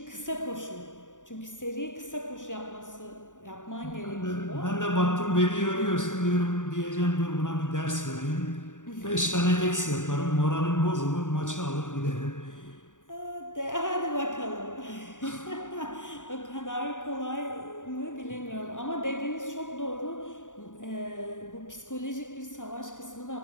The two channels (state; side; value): late; right; 0.87 ms